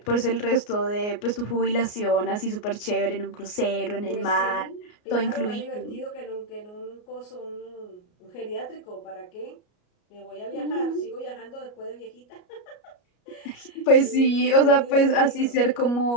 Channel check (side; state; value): right; late; 33 ms